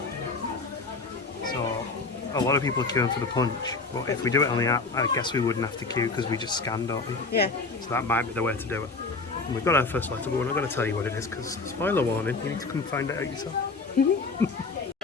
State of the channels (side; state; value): right; quieter; 3.9 dB